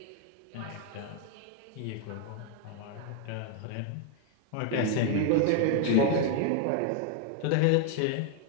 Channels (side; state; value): both; different; correlation 0.01